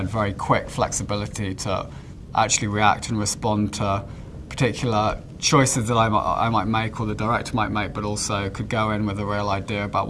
very quick flexibility to actually react and respond to particular choices that I might make or the director might make, but also could go in with a real idea about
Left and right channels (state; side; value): identical; both; correlation 1.00